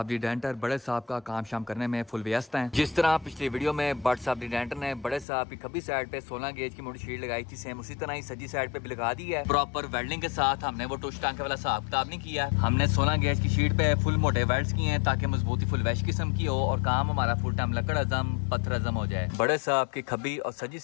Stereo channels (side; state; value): right; drops out; at 5.2 s